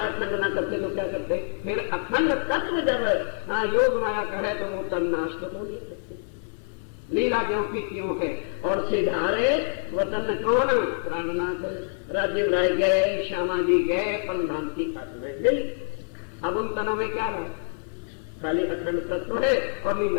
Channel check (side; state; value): right; silent; 61 dB below the other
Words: अखंड ना करते तो क्या करते? फिर अखंड तत्व जब योग माया कहे तो वो तन्नाश तो नहीं सकते। लीला क्यों की क्यों है? और सिधारे वतन कौन? प्राणनाथ राज्य राय गए, श्यामा जी गए, परमधाम आत्मा गई। अब उन तनों में क्या रहा? खाली अखंड तत्व है और